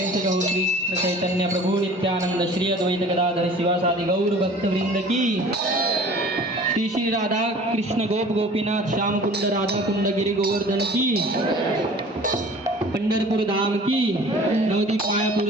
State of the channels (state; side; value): normal; both; correlation 0.46